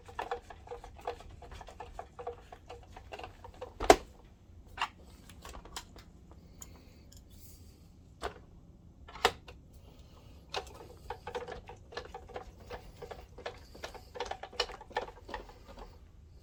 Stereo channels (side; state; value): both; identical; correlation 1.00